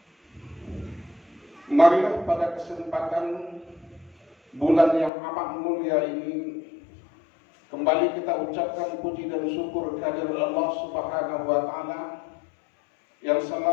marilah pada kesempatan bulan yang amat mulia ini kembali kita ucapkan puji dan syukur kehadirat Allah Subhanahu wa ta'ala yang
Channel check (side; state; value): right; drops out; at 5.1 s